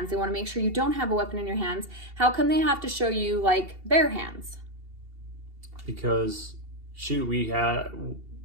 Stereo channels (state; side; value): late; left; 2.7 ms